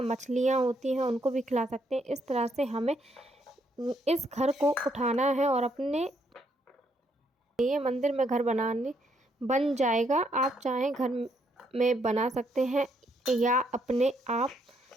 मछलियाँ होती हैं उनको भी खिला सकते हैं। इस तरह से हमें इस घर को उठाना है और अपने ये मंदिर में घर बन जाएगा। आप चाहें घर में बना सकते हैं या अपने आप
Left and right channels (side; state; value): both; normal; correlation 0.73